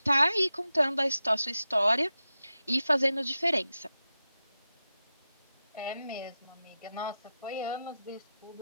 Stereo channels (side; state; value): both; inverted; correlation -0.91